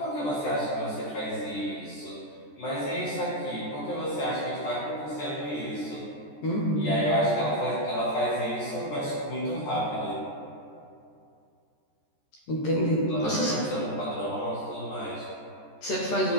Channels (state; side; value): late; right; 14 ms